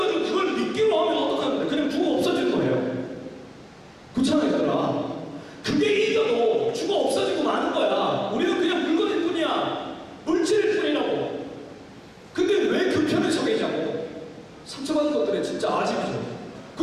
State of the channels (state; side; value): identical; both; correlation 1.00